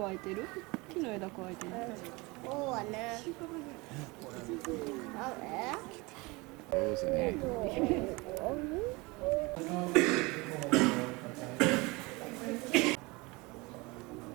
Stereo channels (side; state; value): left; quieter; 24.8 dB